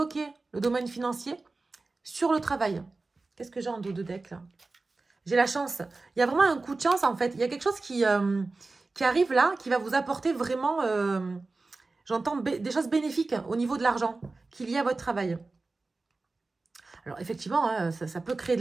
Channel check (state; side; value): quieter; left; 3.6 dB